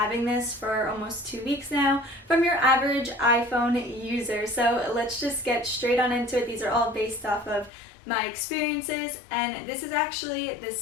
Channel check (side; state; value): right; drops out; at 7.7 s